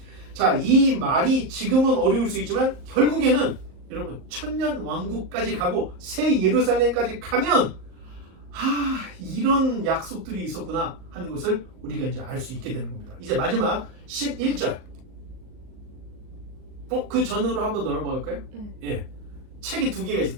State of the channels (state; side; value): late; left; 38 ms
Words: 자, 이 말이 지금은 어려울 수 있지만 결국에는 여러분 천년 왕국까지 가고 새 예루살렘까지 가면 이런 약속들이 있었구나 하는 것을 우리가 이제 알 수 있게 되는 겁니다. 이제 마지막 11절. 그 전으로 한번 넘어갈까요? 예. 책이 2개가